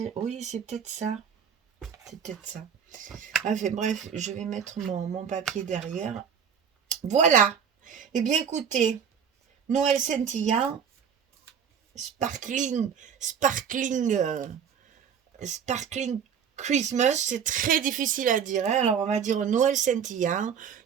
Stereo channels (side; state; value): left; quieter; 7.5 dB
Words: Oui, c'est peut-être ça. C'est peut-être ça. Enfin bref, je vais mettre mon papier derrière. Voilà. Eh bien écoutez, Noël scintillant, sparkling, sparkling, sparkling Christmas, c'est très difficile à dire, hein. Alors on va dire Noël scintillant,